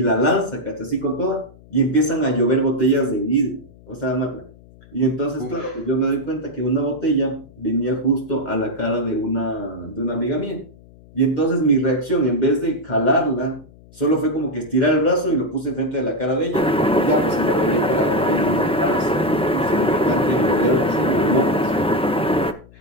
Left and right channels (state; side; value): noise; left; hum, 24 dB below the sound